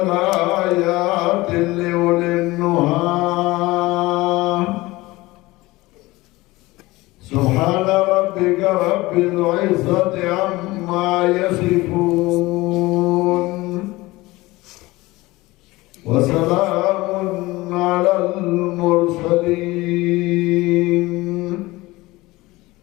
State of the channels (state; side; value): quieter; right; 20.2 dB